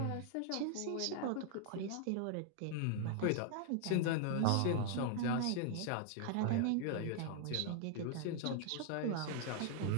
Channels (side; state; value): both; different; correlation 0.00